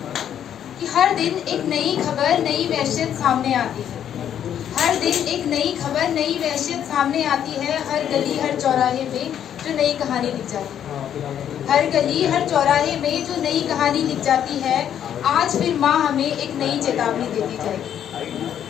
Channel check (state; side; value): quieter; right; 9.7 dB